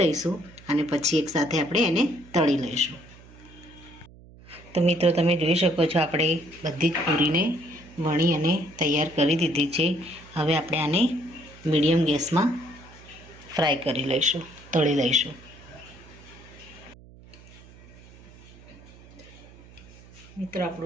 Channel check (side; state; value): right; noise; hum, 22 dB below the sound